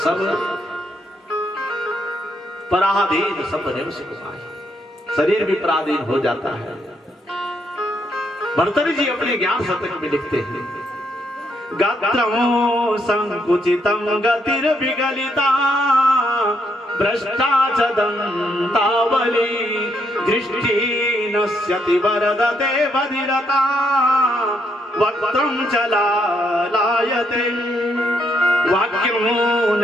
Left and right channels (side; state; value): both; normal; correlation 0.75